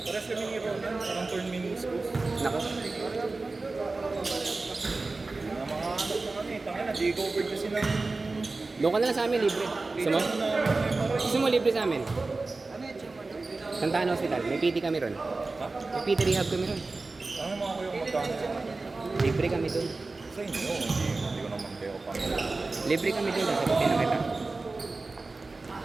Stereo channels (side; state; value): left; quieter; 3.5 dB